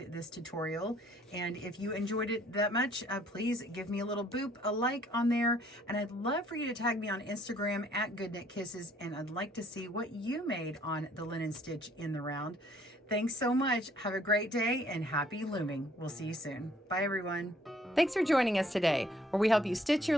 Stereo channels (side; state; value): both; normal; correlation 0.62